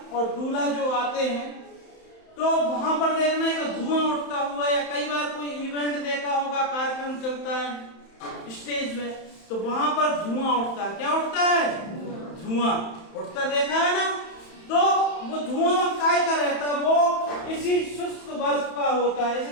और दूल्हा जो आते हैं, तो वहां पर देखना एक धुआं उठता हुआ, या कई बार कोई इवेंट देखा होगा, कार्यक्रम चलता है स्टेज में, तो वहां पर धुआं उठता है। क्या उठता है? धुआं उठता देखा है ना? तो वो धुआं काय का रहता है? वो इसी शुष्क बर्फ का होता है। इसे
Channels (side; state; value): right; late; 31 ms